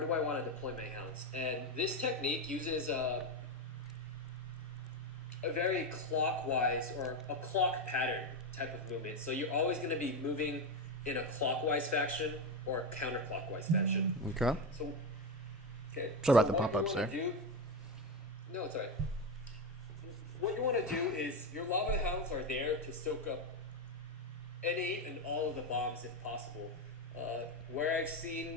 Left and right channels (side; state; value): both; normal; correlation 0.13